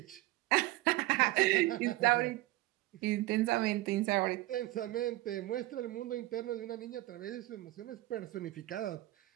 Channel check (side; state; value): left; quieter; 18.0 dB